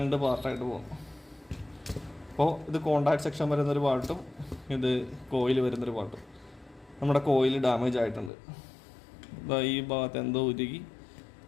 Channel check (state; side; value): drops out; right; at 8.3 s